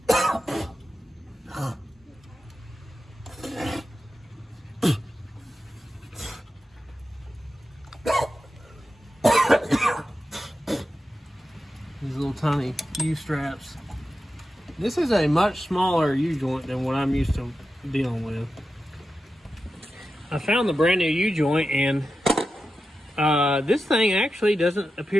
These little tiny U-straps. This is a much smaller U-joint than what I'm used to dealing with. I found the brand new U-joint, and this thing actually doesn't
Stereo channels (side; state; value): both; normal; correlation 0.91